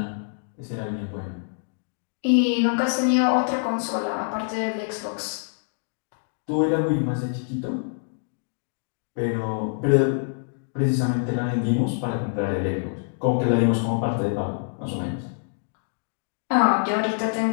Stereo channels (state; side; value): silent; right; digital silence